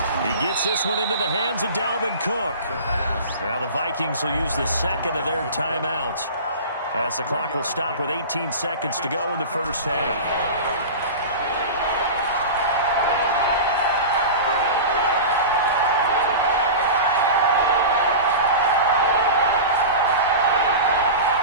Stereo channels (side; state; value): both; inverted; correlation -0.31